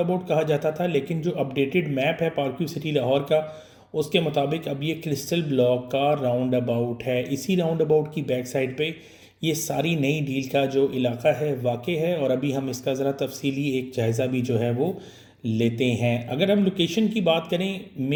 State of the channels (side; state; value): both; identical; correlation 1.00